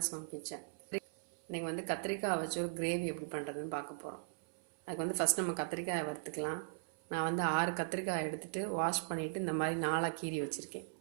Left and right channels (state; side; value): silent; left; 52 dB below the other